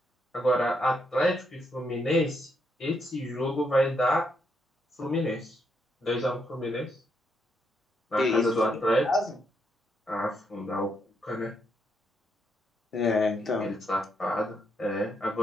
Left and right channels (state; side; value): normal; both; correlation 0.78